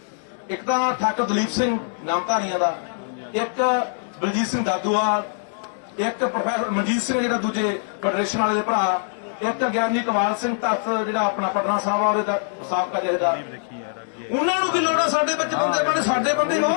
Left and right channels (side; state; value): right; silent; digital silence